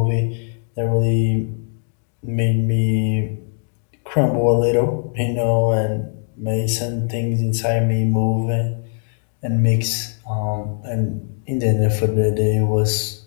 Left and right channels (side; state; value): right; silent; 65 dB below the other